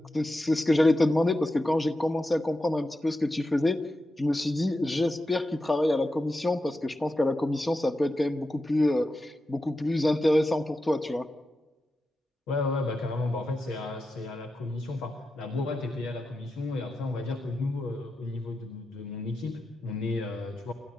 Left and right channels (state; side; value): normal; both; correlation 0.90